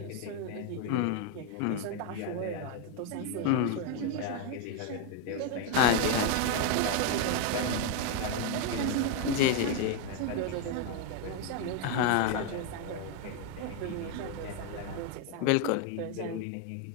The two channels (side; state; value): both; different; correlation 0.01